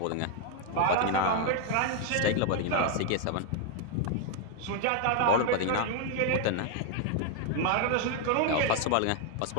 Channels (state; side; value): different; both; correlation 0.01